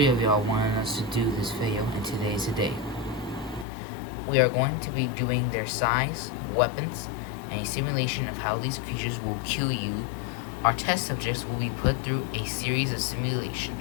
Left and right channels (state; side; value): drops out; right; at 3.7 s